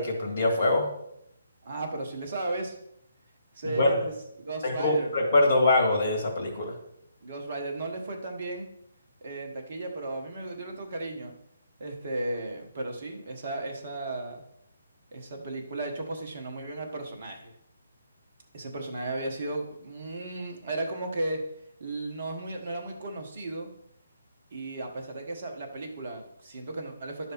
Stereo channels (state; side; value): inverted; both; correlation -0.73